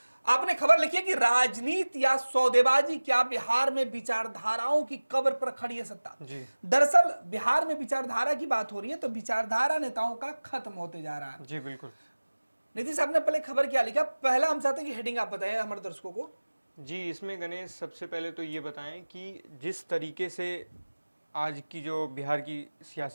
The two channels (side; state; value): both; inverted; correlation -1.00